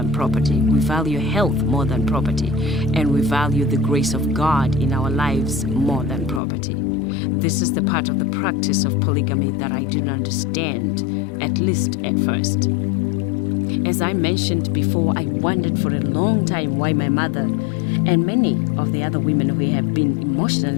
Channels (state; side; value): drops out; right; at 6.4 s